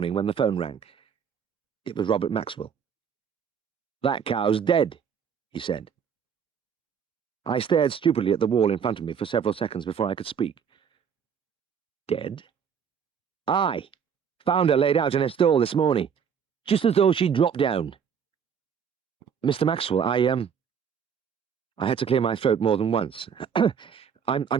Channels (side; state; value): left; quieter; 7.3 dB